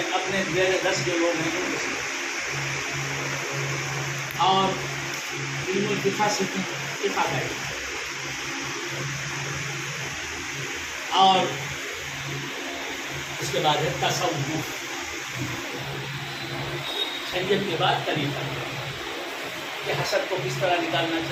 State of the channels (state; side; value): identical; both; correlation 1.00